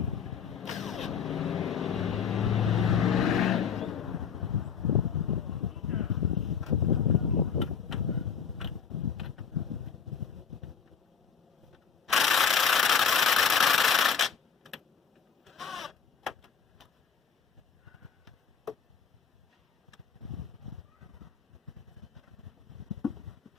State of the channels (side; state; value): right; quieter; 6.8 dB